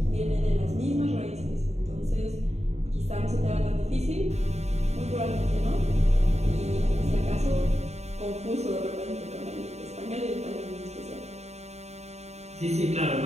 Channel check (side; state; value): left; late; 0.32 ms